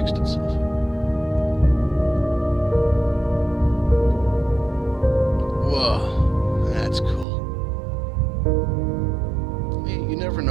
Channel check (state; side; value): drops out; left; at 7.2 s